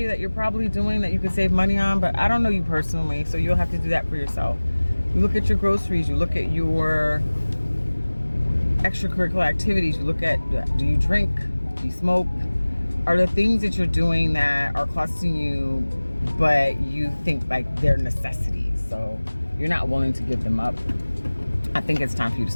that you're probably doing that you could save money on, but I don't know you personally, so you'll have to do that for yourself. You look at your groceries, you look at your extracurricular activities, you look at, do you drink, do you smoke? Are there things that you're doing that are costing you, but you think like they're necessities, so you're not willing to give them up? I think it's time for you to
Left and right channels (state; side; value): inverted; both; correlation -1.00